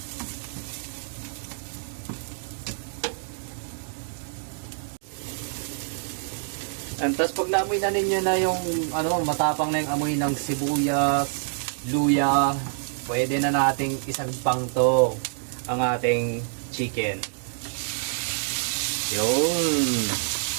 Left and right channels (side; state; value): left; silent; digital silence